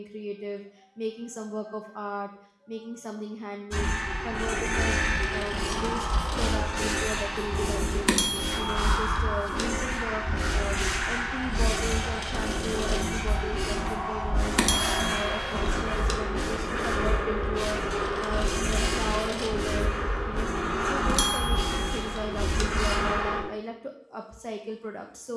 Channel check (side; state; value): both; identical; correlation 1.00